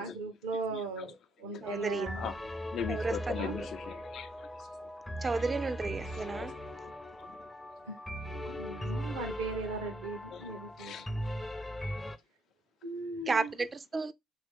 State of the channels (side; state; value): both; normal; correlation 0.74